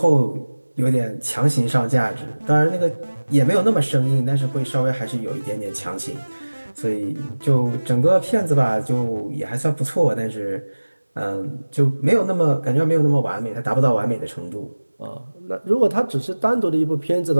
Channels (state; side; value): inverted; both; correlation -1.00